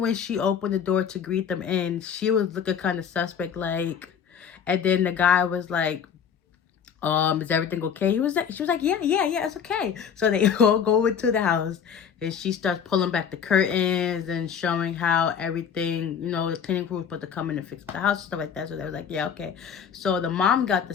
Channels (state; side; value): quieter; right; 7.5 dB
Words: when she opened the door to greet them in, she was looking kind of suspect, like. And then the guy was like, is everything okay? She was like, yeah, it's okay. So they all go into the house and she starts pulling back the curtains and showing how everything, the cleaning crew was supposed to come in and fix the house and stuff like that. So they was like, yeah, okay. So the mom got the